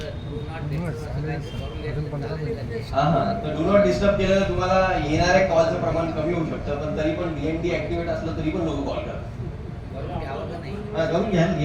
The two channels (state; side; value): identical; both; correlation 1.00